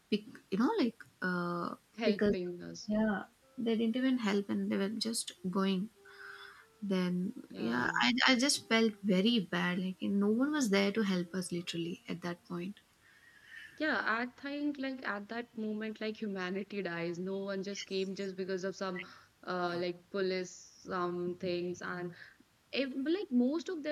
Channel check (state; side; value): identical; both; correlation 1.00